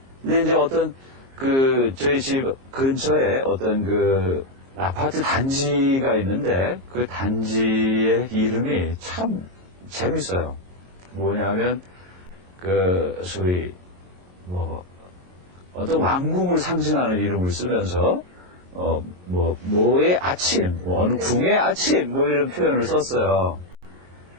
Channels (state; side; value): late; left; 22 ms